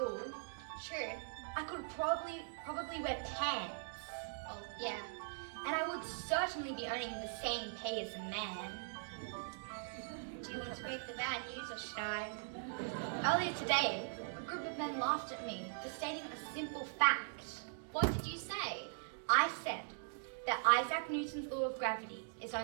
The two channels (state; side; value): silent; left; digital silence